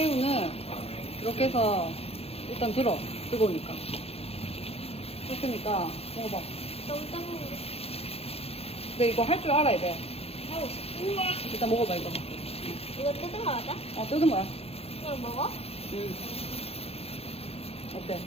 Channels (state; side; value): late; right; 0.29 ms